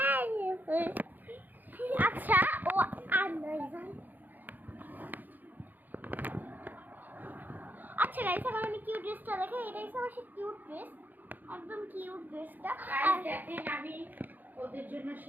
আচ্ছা, ও আর আচ্ছা গাইস, এখন আমি কিউট ড্রেসটা দেখে। এটাই আমার সেই কিউট ড্রেস, একদম কিউট ড্রেসটা। দেখেন আমি ওদের জন্য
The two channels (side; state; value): left; late; 0.085 ms